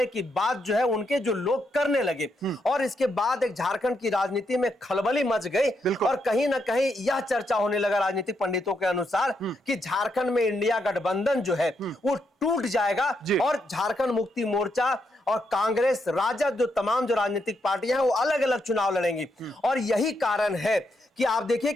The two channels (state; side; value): normal; both; correlation 0.80